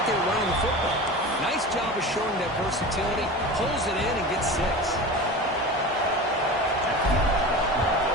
there running the football. Nice job of showing that versatility. Pulls it in and gets 6.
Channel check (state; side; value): normal; both; correlation 0.31